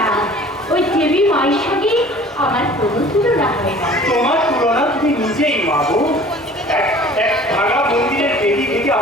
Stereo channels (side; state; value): both; normal; correlation 0.47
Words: ওই দেবী মায়ের সঙ্গে আমার কোনো তুলনা হয় না। তোমার তুলনা তুমি নিজেই মা গো। এক ভাঙা মন্দিরের দেবী থেকে